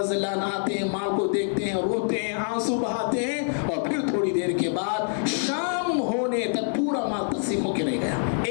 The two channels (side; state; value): right; silent; 61 dB below the other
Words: اللہ عنہ آتے ہیں, مال کو دیکھتے ہیں, روتے ہیں, آنسو بہاتے ہیں, اور پھر تھوڑی دیر کے بعد شام ہونے تک پورا مال تقسیم ہو کے رہ گیا.